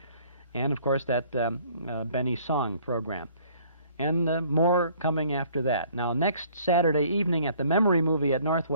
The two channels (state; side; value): inverted; both; correlation -0.58